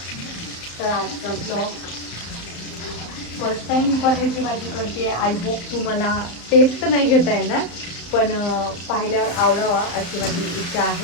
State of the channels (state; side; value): late; right; 35 ms